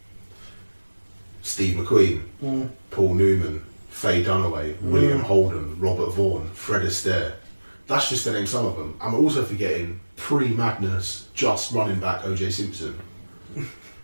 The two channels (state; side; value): inverted; both; correlation -1.00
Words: Steve McQueen, Paul Newman, Faye Dunaway, William Holden, Robert Vaughn, Fred Astaire. That's just to name some of them. I'm also forgetting pre-madness, just running back O.J. Simpson.